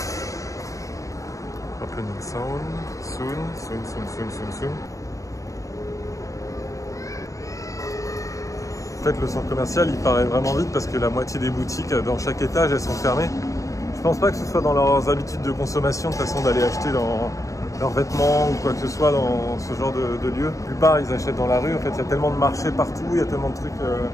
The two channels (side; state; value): right; late; 0.16 ms